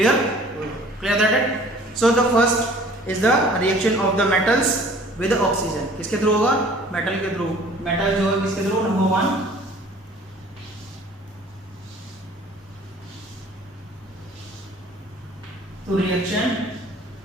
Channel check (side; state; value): both; normal; correlation 0.51